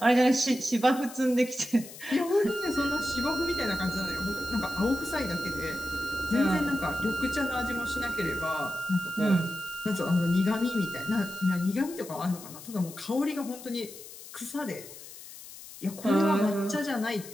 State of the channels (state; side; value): noise; left; hiss, 15 dB below the sound